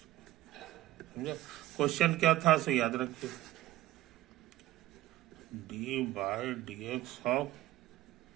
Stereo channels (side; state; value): left; quieter; 15.6 dB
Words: समझे? क्वेश्चन क्या था सो याद रखिए, d/dx ऑफ